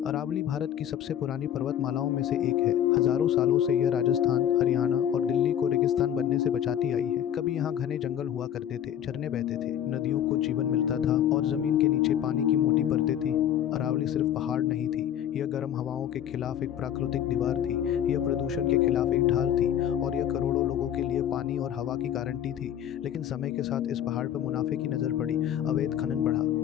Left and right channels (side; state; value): right; quieter; 10.2 dB